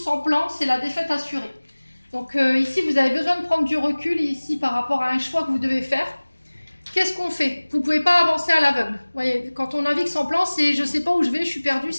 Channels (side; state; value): both; inverted; correlation -1.00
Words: plan, c'est la défaite assurée. Donc ici, vous avez besoin de prendre du recul ici par rapport à un choix que vous devez faire. Qu'est-ce qu'on fait ? Vous ne pouvez pas avancer à l'aveugle. Vous voyez, quand on navigue sans plan, c'est je ne sais pas où je vais, je suis perdu,